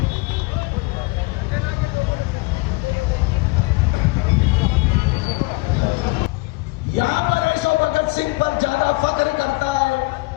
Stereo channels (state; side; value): quieter; right; 24.7 dB